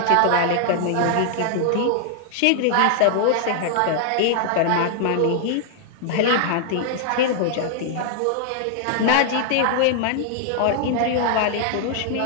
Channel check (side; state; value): both; different; correlation 0.00